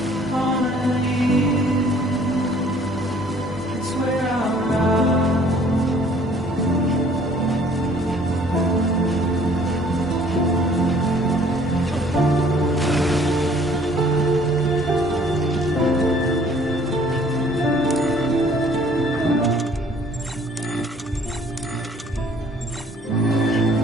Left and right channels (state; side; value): normal; both; correlation 0.57